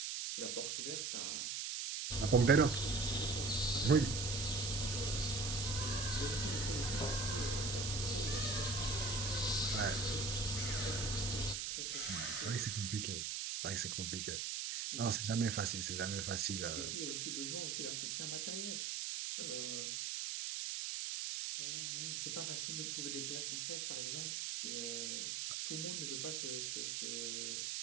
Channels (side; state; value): right; noise; hiss, 2 dB below the sound